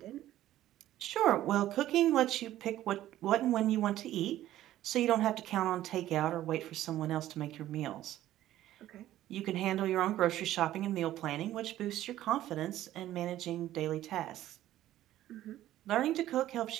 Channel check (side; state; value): left; quieter; 13.6 dB